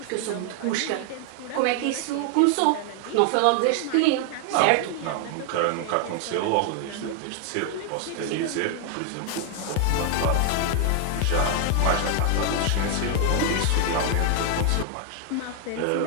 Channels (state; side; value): different; both; correlation 0.00